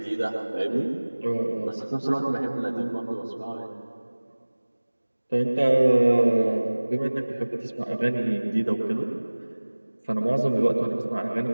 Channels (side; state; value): both; inverted; correlation -1.00